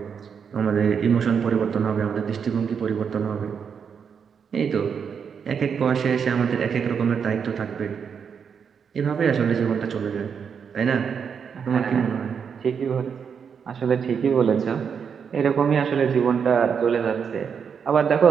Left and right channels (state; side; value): quieter; left; 6.8 dB